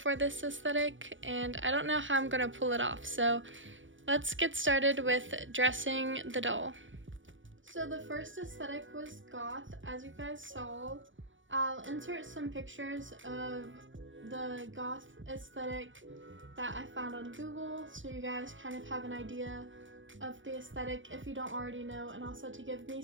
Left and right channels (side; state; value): left; late; 0.56 ms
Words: this aesthetic, and I don't know how I'm gonna pull it off, so let's get started with dressing the doll. So the first aesthetic was goth, as you guys saw. I'll insert some pictures of the goth aesthetic that I found on Google, so you guys kind of have an idea of the aesthetic if you don't already know, and also to give me